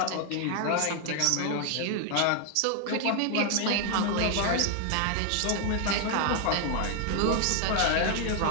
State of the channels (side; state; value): both; different; correlation 0.00